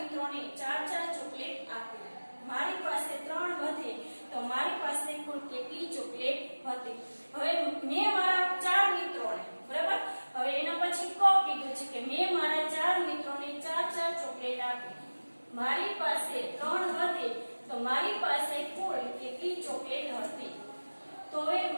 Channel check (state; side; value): inverted; both; correlation -1.00